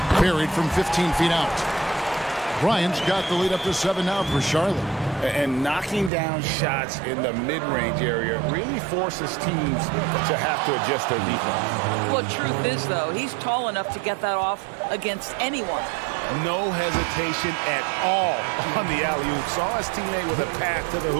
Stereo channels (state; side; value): drops out; left; at 6.1 s